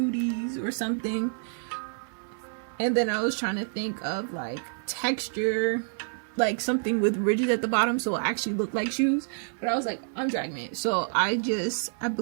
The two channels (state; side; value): silent; left; 59 dB below the other